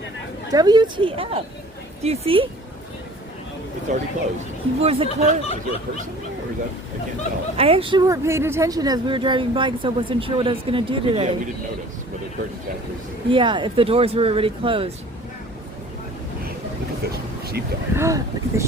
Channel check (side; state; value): both; normal; correlation 0.47